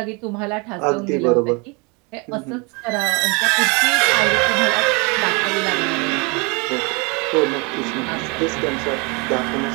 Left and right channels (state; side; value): quieter; left; 30.2 dB